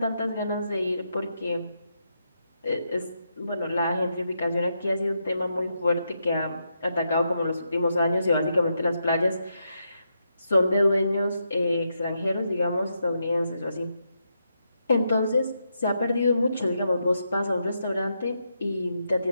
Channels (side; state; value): both; inverted; correlation -0.82